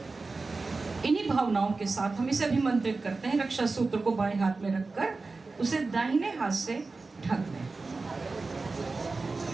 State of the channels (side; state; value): left; quieter; 3.8 dB